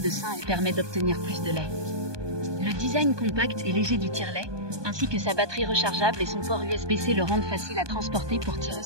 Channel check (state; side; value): late; left; 1.2 ms